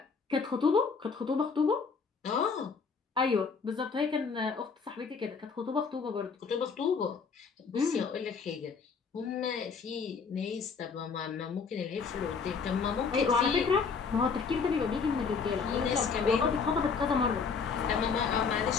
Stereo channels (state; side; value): quieter; right; 5.4 dB